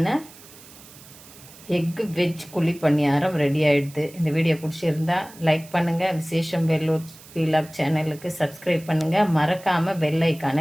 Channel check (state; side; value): noise; right; hiss, 21 dB below the sound